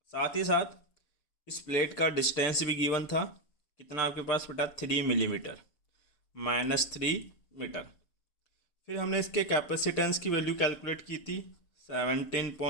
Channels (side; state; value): right; late; 6.7 ms